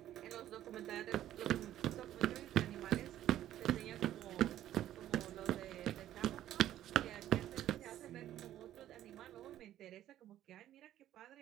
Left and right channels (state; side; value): quieter; left; 12.5 dB